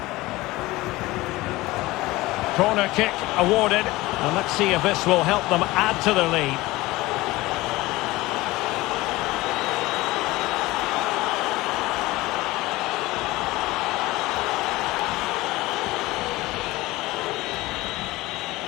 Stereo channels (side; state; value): right; quieter; 19.5 dB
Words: Corner kick awarded. And let's see if this will help them add to their lead.